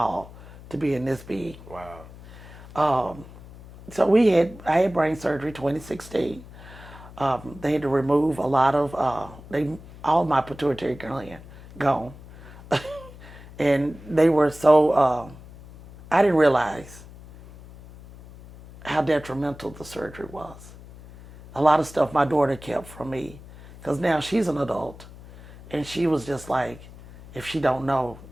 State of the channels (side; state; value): left; noise; hum, 18 dB below the sound